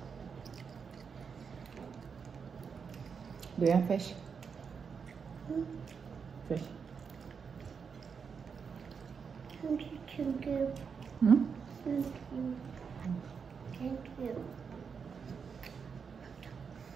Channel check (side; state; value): left; quieter; 6.0 dB